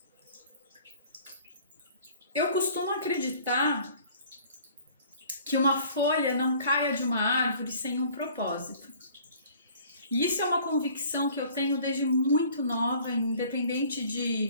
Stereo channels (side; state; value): both; inverted; correlation -0.52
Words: Eu costumo acreditar que uma folha não caia de uma árvore sem um propósito. E isso é uma convicção que eu tenho desde muito nova, independente